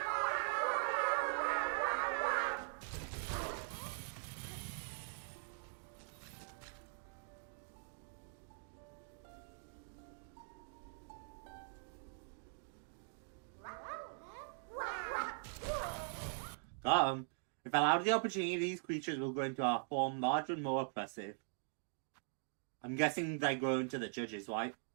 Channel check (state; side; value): silent; left; digital silence